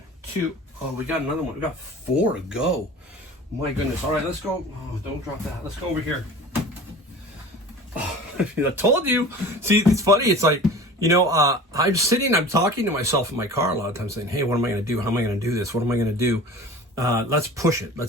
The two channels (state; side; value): normal; both; correlation 0.39